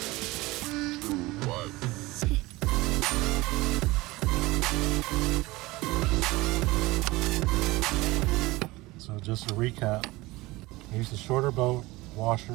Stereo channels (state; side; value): quieter; left; 20.7 dB